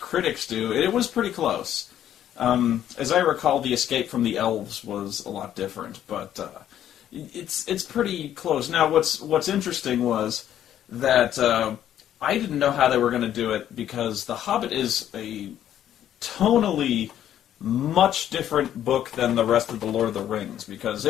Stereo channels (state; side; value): quieter; right; 11.0 dB